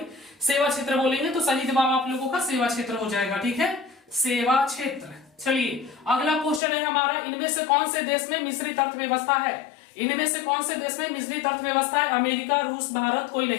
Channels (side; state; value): right; drops out; at 6.6 s